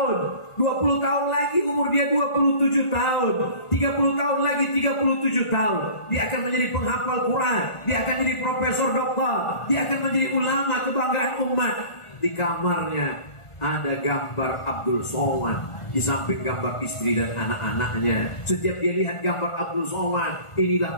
20 tahun lagi umur dia 27 tahun, 30 tahun lagi 37 tahun. Dia akan menjadi penghafal Quran, dia akan jadi profesor doktor, dia akan menjadi ulama kebanggaan umat. Di kamarnya ada gambar Abdul Somad, di samping gambar istri dan anak-anaknya. Setiap dia lihat gambar Abdul Somad, inilah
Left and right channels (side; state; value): right; late; 1.5 ms